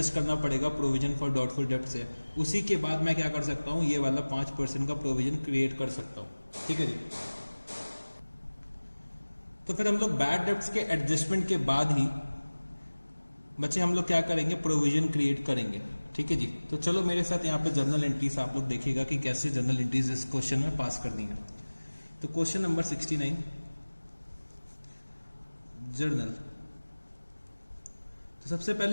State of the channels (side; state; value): both; inverted; correlation -1.00